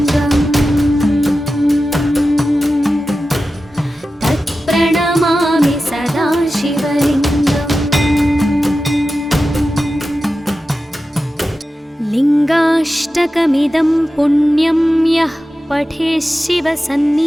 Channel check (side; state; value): both; normal; correlation 0.93